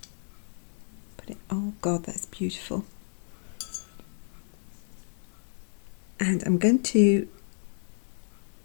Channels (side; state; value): right; silent; 57 dB below the other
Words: Oh God, that's beautiful. And I'm going to